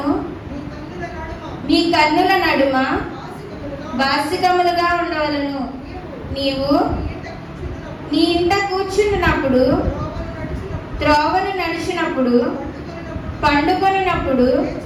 కన్నుల నడుమ బాసికములుగా ఉండవలను. నీవు నీ ఇంట కూర్చున్నప్పుడు, త్రోవను నడిచినప్పుడు, పండుకొనినప్పుడు,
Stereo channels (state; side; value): identical; both; correlation 1.00